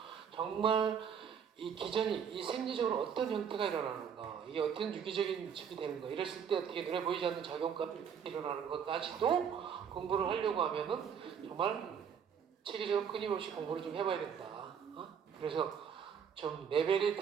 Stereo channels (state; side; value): quieter; left; 7.4 dB